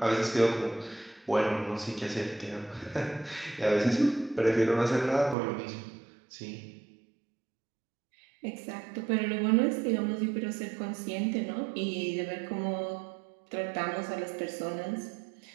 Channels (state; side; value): drops out; left; at 5.4 s